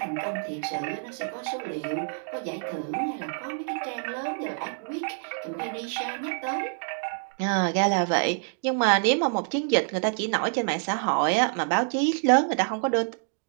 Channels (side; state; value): left; silent; 60 dB below the other